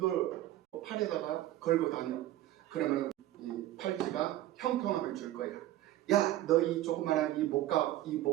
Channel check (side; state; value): left; quieter; 14.3 dB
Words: 팔에다가 걸고 다녀. 그러면 이 팔찌가 형통함을 줄 거야. 야, 너 이 조그만한 이